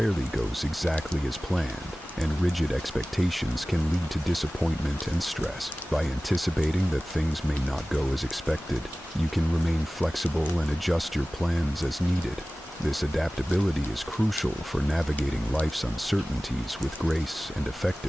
goes exactly as planned, and rigid expectations can lead to disappointment and stress. By anticipating that things may not go as expected, you can remain flexible and adjust your plans as needed. This adaptability is crucial for navigating life's uncertainties with grace and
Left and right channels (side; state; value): both; normal; correlation 0.97